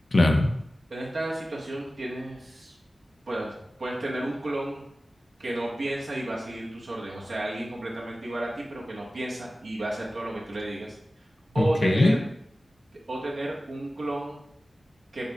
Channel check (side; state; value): both; normal; correlation 0.95